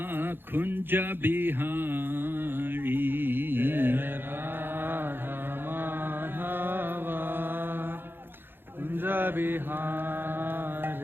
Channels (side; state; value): left; late; 0.10 ms